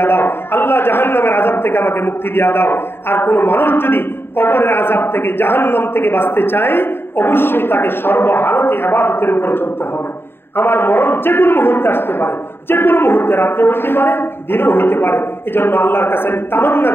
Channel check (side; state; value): right; late; 0.11 ms